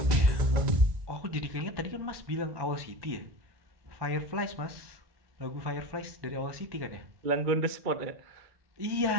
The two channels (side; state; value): left; late; 1.2 ms